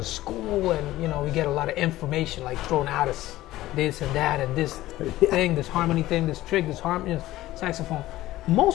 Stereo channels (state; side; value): quieter; right; 16.0 dB